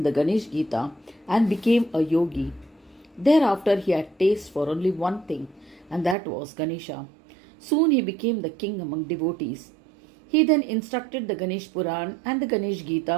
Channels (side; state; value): left; drops out; at 6.2 s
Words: the Ganesh Gita and became a yogi. Thereafter he had taste for only one thing, and that was Ganesha. Soon he became the king among devotees. He then instructed the Ganesh Puran and the Ganesh